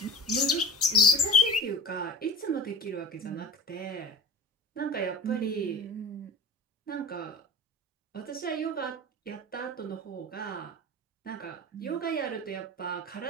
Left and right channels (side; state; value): both; normal; correlation 0.36